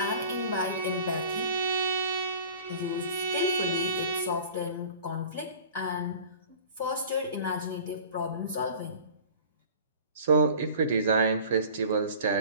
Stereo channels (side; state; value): both; inverted; correlation -0.44